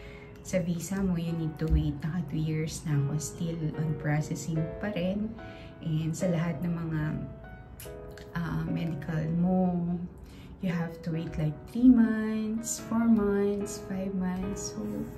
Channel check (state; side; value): identical; both; correlation 1.00